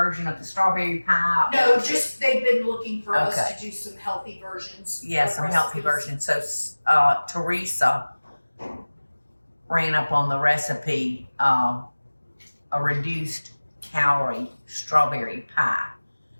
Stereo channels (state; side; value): inverted; both; correlation -1.00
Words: of the strawberry pie? No, just they've been looking for us Okay. to do some healthy versions. Yeah, of some healthy recipes. versions. So Teresa ran up on the recipe, a reduced calorie strawberry pie.